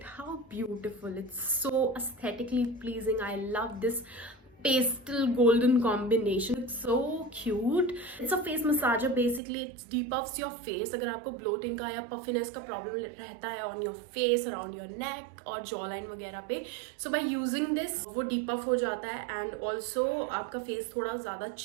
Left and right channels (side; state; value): left; drops out; at 9.4 s